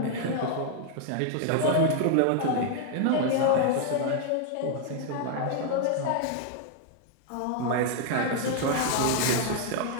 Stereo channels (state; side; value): different; both; correlation 0.00